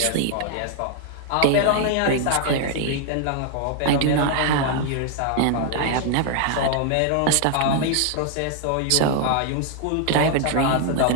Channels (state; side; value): different; both; correlation 0.00